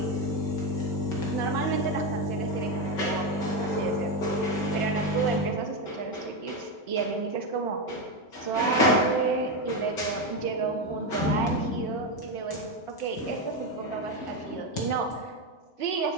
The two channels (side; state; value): right; late; 5.3 ms